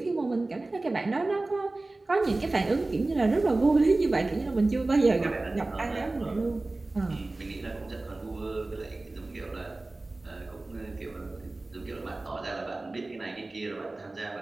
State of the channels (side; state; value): left; quieter; 3.0 dB